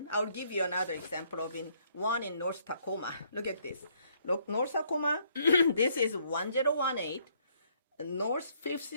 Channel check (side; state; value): both; inverted; correlation -0.68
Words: I'll give you another example of one in North Tacoma. Look at this. Look, North Tacoma. This is 1018 North